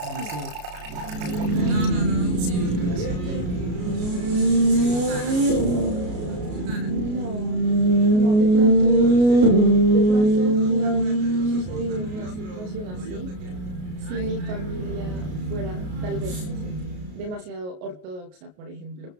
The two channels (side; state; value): left; late; 33 ms